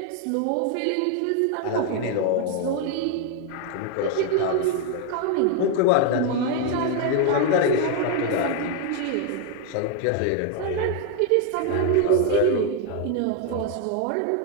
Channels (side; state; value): both; different; correlation 0.01